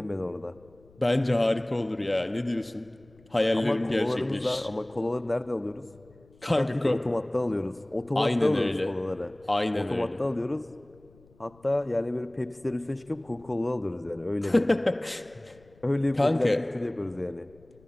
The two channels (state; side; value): noise; left; rumble, 28 dB below the sound